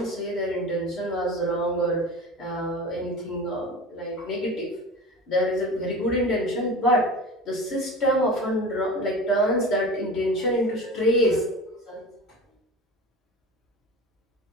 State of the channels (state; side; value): normal; both; correlation 0.33